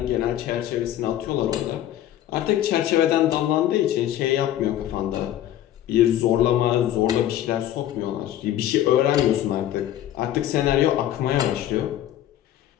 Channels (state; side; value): quieter; right; 12.3 dB